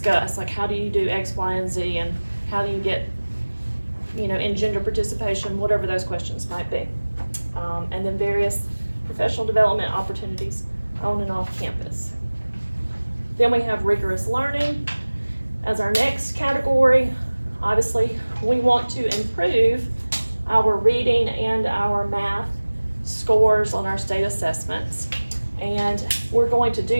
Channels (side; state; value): both; inverted; correlation -1.00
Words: like, how do you do X, Y, and Z, and how do you get, in gender participation, whatever those questions might be. And then various professional development opportunities on and off campus. Then we have rigorous learning as our next category. Obviously, we want to improve our reading and our math scores on our state assessments. And we're going to